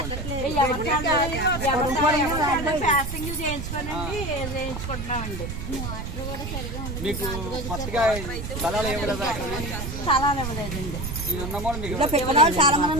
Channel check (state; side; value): noise; right; rumble, 6 dB below the sound